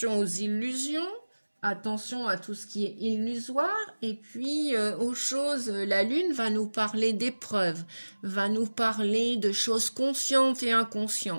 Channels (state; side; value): inverted; both; correlation -1.00